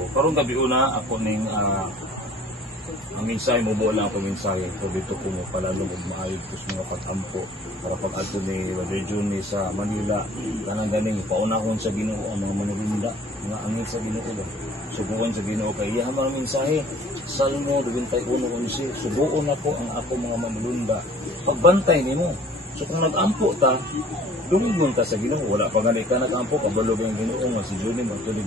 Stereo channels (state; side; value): normal; both; correlation 0.51